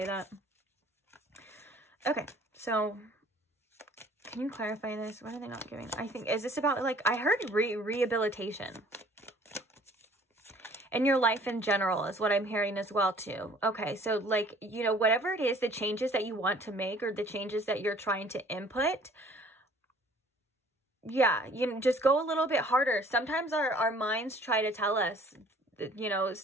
that. Okay, so can you clarify this? What are they not giving? I think, is this about, like, I heard rehabilitation. And your life in general is what I'm hearing as well too. Okay, so like, you know, whatever it is, the changes that you want to make or the changes that you're trying to input, yeah, you know, just go a little bit harder. Sometimes our minds try to tell us, you know,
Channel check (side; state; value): both; normal; correlation 0.54